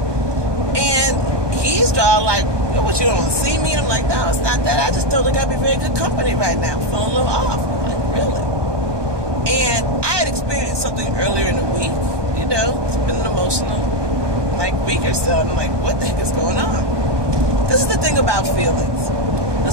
And he's all like, what, you don't want to see me? And I'm like, no, it's not that. I just don't think I'd be very good company right now. I'm feeling a little off. I'm like, really? And I had experienced something earlier in the week. It's been an emotional, week or so. And I'm like, what the heck is going on? This is the thing about feelings.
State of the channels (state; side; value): late; left; 1.2 ms